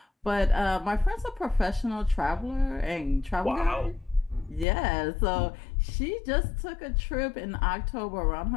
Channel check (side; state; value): right; drops out; at 4.7 s